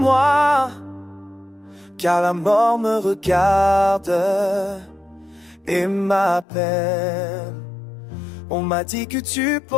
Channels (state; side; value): drops out; right; at 6.5 s